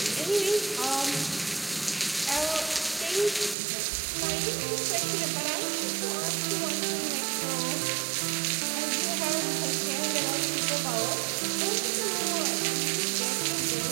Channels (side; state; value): left; drops out; at 3.6 s